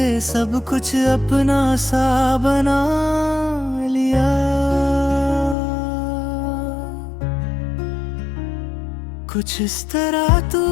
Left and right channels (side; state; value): right; drops out; at 5.6 s